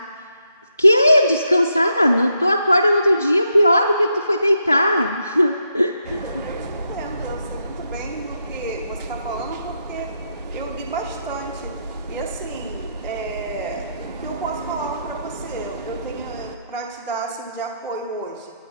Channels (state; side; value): inverted; both; correlation -0.80